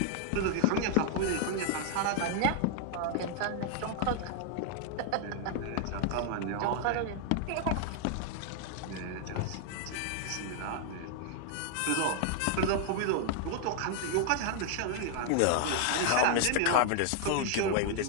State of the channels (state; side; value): different; both; correlation 0.00